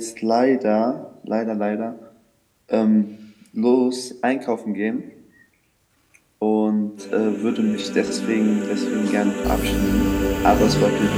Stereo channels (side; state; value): both; identical; correlation 1.00